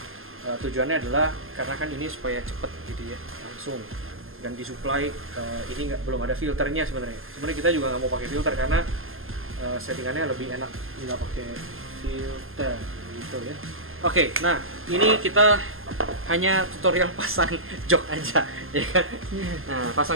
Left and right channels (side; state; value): left; late; 0.60 ms